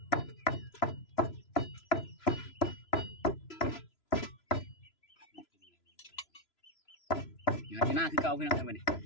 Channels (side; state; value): right; late; 3.0 ms